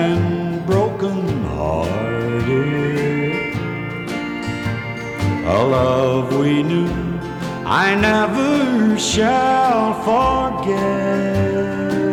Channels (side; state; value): both; identical; correlation 1.00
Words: broken-hearted. A love we knew I never shall forget.